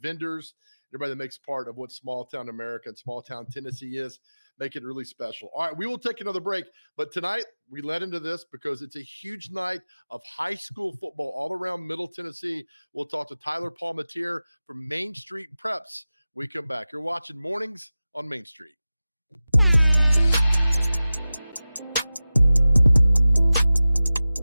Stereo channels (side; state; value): both; inverted; correlation -0.96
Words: everybody that makes part of what small town America and small town Tennessee is. Make it really special. All right, we will take another break. But tonight, we led into this because it's a huge night of high school football all around Middle Tennessee. We'll talk to Tyler Palmatier from Main Street Preps. We come back. You're watching Mornings on Main Street.